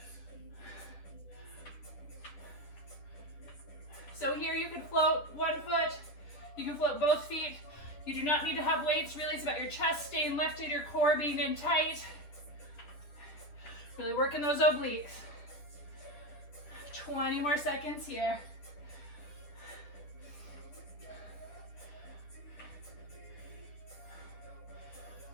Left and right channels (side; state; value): right; late; 10 ms